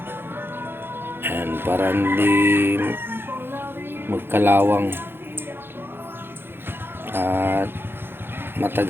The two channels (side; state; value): left; late; 0.10 ms